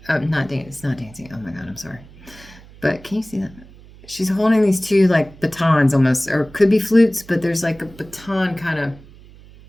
it's not dancing. Oh my God, I'm sorry. But can you see that? She's holding these two like batons almost, or could be flutes, but there's like a baton kind of,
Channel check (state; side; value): noise; right; hum, 22 dB below the sound